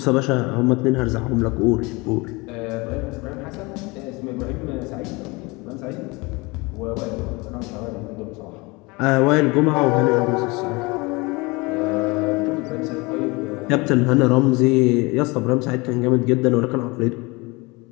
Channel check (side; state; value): right; quieter; 25.3 dB